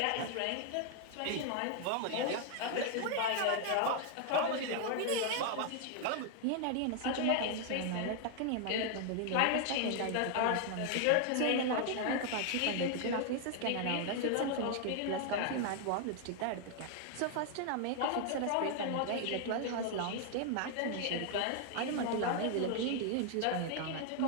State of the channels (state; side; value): different; both; correlation 0.00